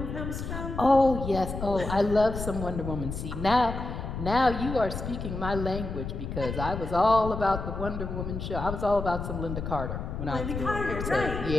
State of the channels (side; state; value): left; noise; rumble, 6 dB below the sound